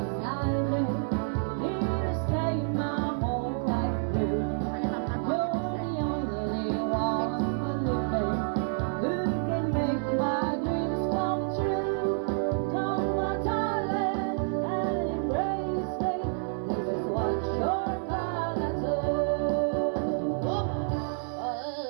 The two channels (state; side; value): silent; left; 59 dB below the other